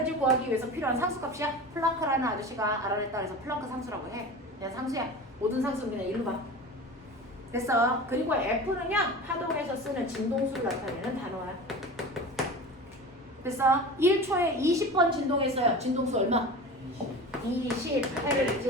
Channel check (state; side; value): normal; both; correlation 0.33